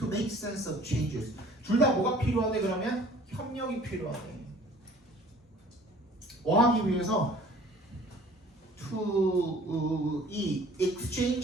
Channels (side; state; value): both; normal; correlation 0.51